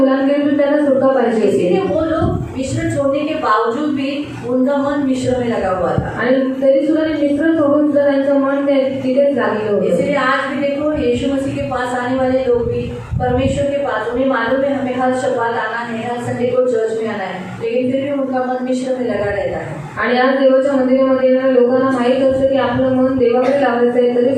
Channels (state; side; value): identical; both; correlation 1.00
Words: त्यांना सुटका पाहिजे इसीलिए होती. वो लोग मिश्र छोड़ने के बावजूद भी उनका मन मिश्र में लगा हुआ था। आणि तरी सुद्धा ते मिश्र सोडून सुद्धा त्यांचं मन तिथेच लागलेलं होतं. इसलिए आज भी देखो यीशु मसीह के पास आने वाले लोग भी परमेश्वर के पास, उन्हें मालूम है हमें हर शब्बात आना है, हर संडे को चर्च में आना है, लेकिन फिर भी उनका मन मिश्र में लगा रहता है. आणि आज देवाच्या मंदिरामध्ये येणाऱ्या लोकांना माहीत असतं की आपलं मन देवाकडे लावायचं आहे, तरी